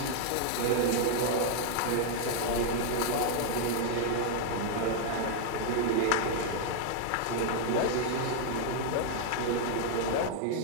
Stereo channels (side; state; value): both; different; correlation -0.01